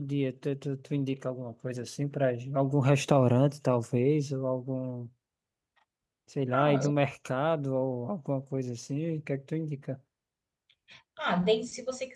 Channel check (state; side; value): identical; both; correlation 1.00